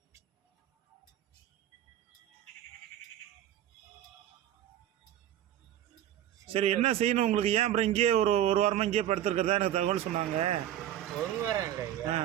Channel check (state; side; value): quieter; left; 11.6 dB